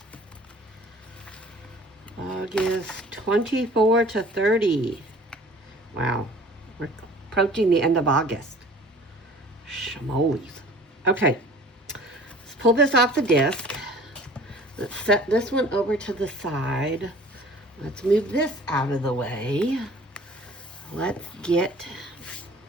August 24 to 30. Wow, we're approaching the end of August. Shamoles. Okay, let's pull this off the disc. Let's set this one over to the side. Let's move this out of the way. Let's get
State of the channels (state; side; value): normal; both; correlation 0.48